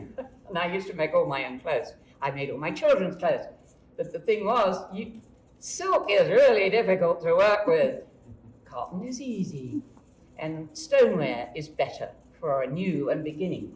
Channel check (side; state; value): both; identical; correlation 1.00